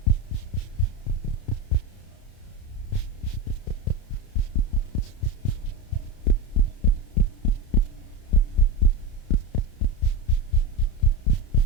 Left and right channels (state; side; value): late; right; 31 ms